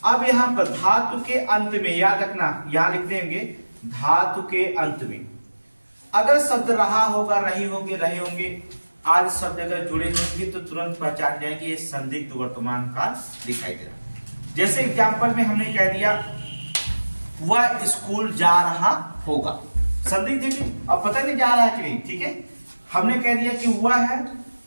अब यहां पर धातु के अंत में याद रखना, यहां लिख देंगे धातु के अंत में अगर शब्द रहा होगा, रही होंगे, रहे होंगे, आदि शब्द अगर जुड़े होंगे तो तुरंत पहचान जाएंगे ये संदिग्ध वर्तमान काल दिखाई दे रहा। जैसे एग्जाम्पल में हमने कह दिया वह स्कूल जा रहा होगा, संदिग्ध देखिए अब पता नहीं जा रहा है कि नहीं। ठीक है, हमने कह दिया कि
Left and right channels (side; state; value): both; inverted; correlation -1.00